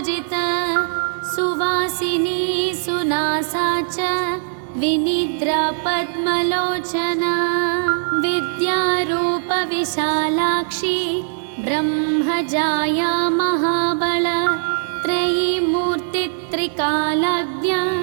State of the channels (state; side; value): silent; left; digital silence